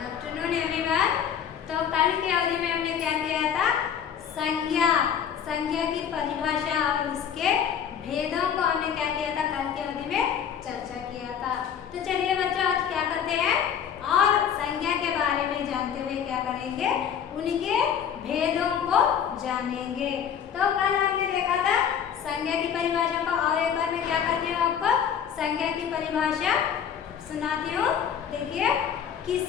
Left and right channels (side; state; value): right; quieter; 8.3 dB